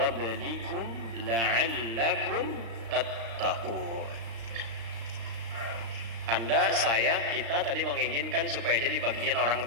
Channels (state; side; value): late; left; 35 ms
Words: la'allakum tattaqun. Anda, saya, kita tadi menginginkan supaya jadi bagian orang